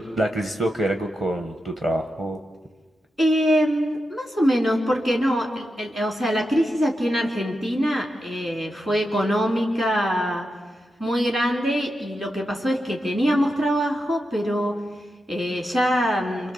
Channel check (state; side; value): normal; both; correlation 0.88